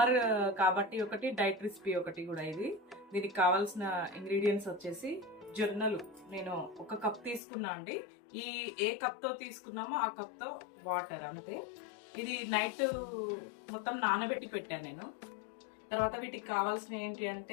కాబట్టి ఒకటి, డైట్ రెసిపీ ఒకటి కూడా. దీనికి కావాల్సిన ఇంగ్రీడియంట్స్ వచ్చేసి జొన్నలు నేను 1 కప్ తీసుకున్నా అండి. ఏ కప్తో తీసుకున్నామో ఆ కప్తో వాటర్ అంతే. ఇది నైట్ మొత్తం నానబెట్టి పెట్టాను నేను. తర్వాత వీటికి కావాల్సిన ఏంటి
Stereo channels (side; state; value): right; drops out; at 7.4 s